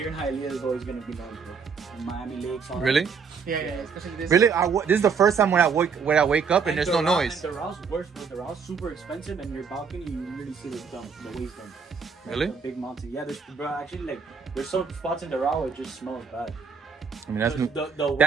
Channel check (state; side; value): quieter; left; 5.8 dB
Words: in Hialeah is always gonna be noise, bro. In Miami Lakes. Really? Yeah, especially this. Really? This is the first time when I wake up and there's no noise. And the Rouse worse, but the Rouse super expensive, and your balcony you really see the waste dump. Really? The big mountain. Yeah, there's some spots in the Doral where it just smells bad. I mean,